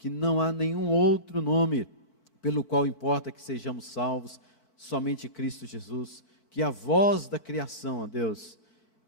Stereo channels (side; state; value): right; late; 4.5 ms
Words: não há nenhum outro nome pelo qual importa que sejamos salvos, somente Cristo Jesus. Que a voz da criação, ó Deus,